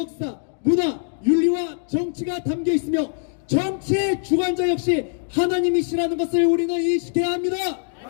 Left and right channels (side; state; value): right; silent; digital silence